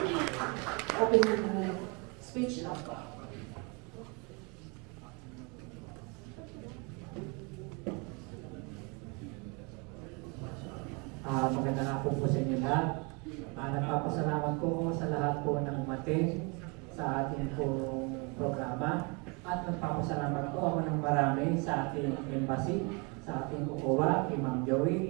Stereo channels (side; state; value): left; quieter; 31.1 dB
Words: open speech na po. Magandang hapon po sa inyo lahat. Nagpapasalamat po ako sa lahat po ng umating sa ating pong programa. At nagpapasalamat po ako ng marami sa ating embassy, sa ating OWA, kay Ma'am